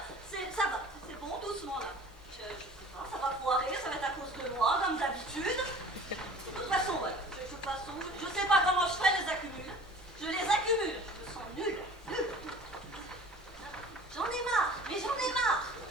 Ça va, c'est bon, doucement là. Je sais pas, ça va foirer, ça va être à cause de moi, comme d'habitude. De toute façon, ouais, je sais pas comment je fais, les accumule. Je les accumule, je me sens nulle. J'en ai marre, mais j'en ai marre.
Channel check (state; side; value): normal; both; correlation 0.45